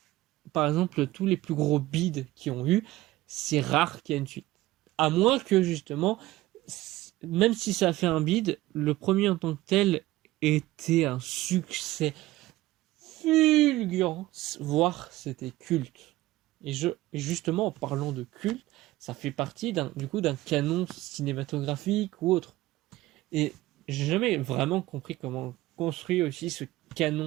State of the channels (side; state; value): left; quieter; 17.2 dB